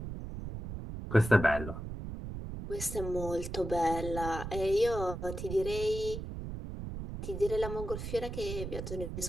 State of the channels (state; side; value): noise; right; rumble, 7 dB below the sound